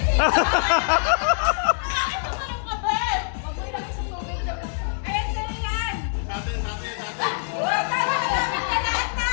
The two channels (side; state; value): right; silent; digital silence